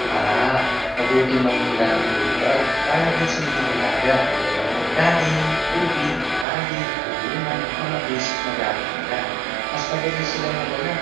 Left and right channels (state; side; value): drops out; left; at 6.5 s